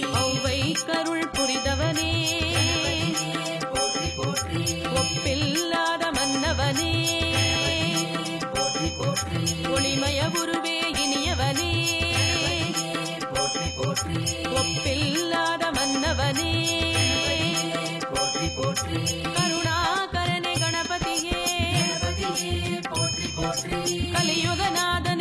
ஔவை கருள் புரிதவனே போற்றி போற்றி. ஒப்பில்லாத மன்னவனே போற்றி போற்றி. ஒளிமய குருவே இனியவனே போற்றி போற்றி. ஒப்பில்லாத மன்னவனே போற்றி போற்றி. கருணாகரனே கணபதியே கணபதியே போற்றி போற்றி.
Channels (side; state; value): both; identical; correlation 1.00